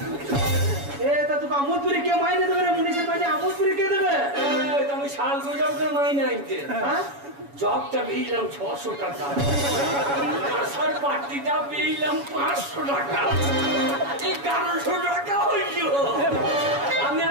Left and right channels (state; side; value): late; left; 7.1 ms